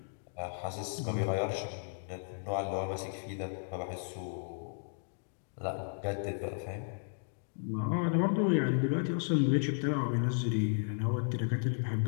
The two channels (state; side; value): silent; right; digital silence